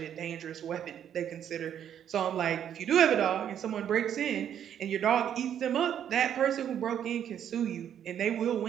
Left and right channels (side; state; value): left; quieter; 9.5 dB